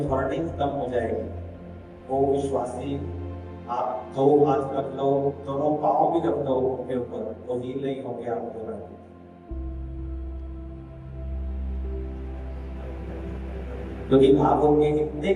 खत्म हो जाएगी, वो विश्वासी आप 2 हाथ रख लो, दोनों पाँव भी रख दो उनके ऊपर, तो हील नहीं हो गया आपको। क्योंकि आप उनके इतने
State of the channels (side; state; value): both; identical; correlation 1.00